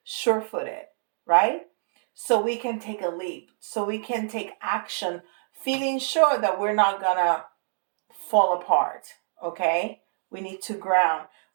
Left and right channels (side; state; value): left; silent; digital silence